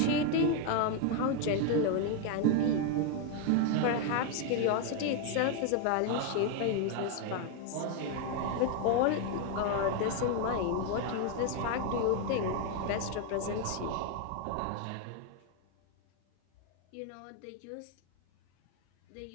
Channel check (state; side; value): different; both; correlation 0.01